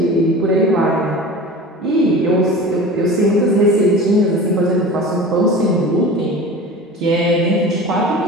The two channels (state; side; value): normal; both; correlation 0.36